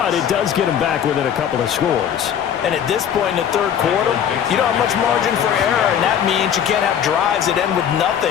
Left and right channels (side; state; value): right; quieter; 9.0 dB